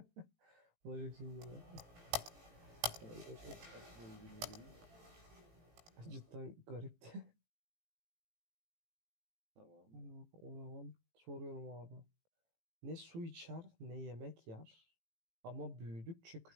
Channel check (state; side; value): late; left; 18 ms